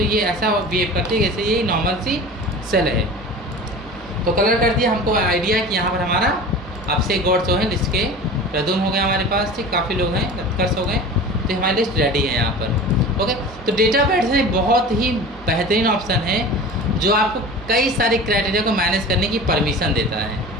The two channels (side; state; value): both; normal; correlation 0.36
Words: ये ऐसा बिहेव करती है जैसे ये नॉर्मल सी सेल है। तो कलर कर दिया, हमको आइडिया है कि यहाँ पर हमारा अब से गॉड जो है लिस्ट के रदून हो गया हमारे पास, ठीक, काफ़ी लोग हैं, उत्कर्ष हो गए, तो हमारी लिस्ट रेडी है यहाँ पर। ओके, तो डेटाबेस एक बहुत ही बेहतरीन ऑप्शन है जो आपको कई सारे क्राइटेरिया को मैनेज करने की परमिशन देता है।